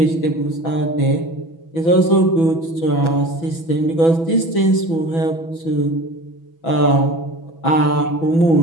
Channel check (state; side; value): late; right; 6.1 ms